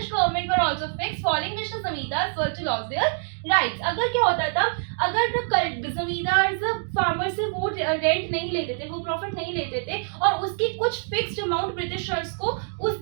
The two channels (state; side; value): silent; left; digital silence